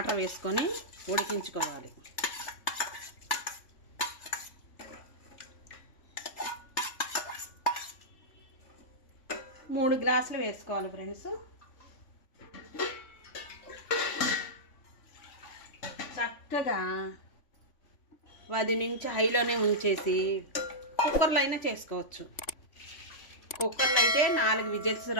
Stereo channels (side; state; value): right; late; 3.5 ms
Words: వేసుకొని ఉడికించుకోవాలి. మూడు గ్లాసులు వేసుకోవాలి ఫ్రెండ్స్. చక్కగా 10 నుంచి హైలోనే ఉంచేసి కుక్కర్లో అయినా చేసుకోవచ్చు. కుక్కర్లో అయితే 4 విజిల్స్